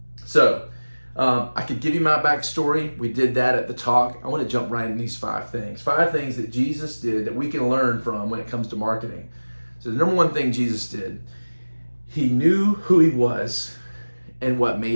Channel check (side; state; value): both; inverted; correlation -1.00